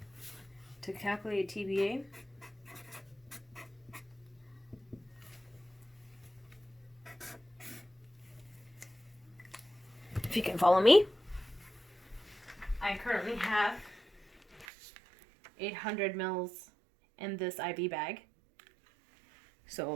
To calculate TBA, if you can follow me, I currently have 800 mils in this IV bag.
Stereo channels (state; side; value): drops out; left; at 14.7 s